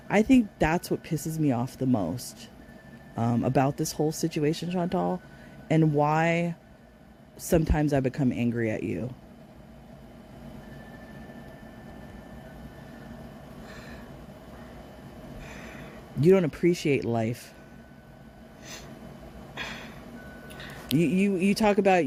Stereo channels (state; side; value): identical; both; correlation 1.00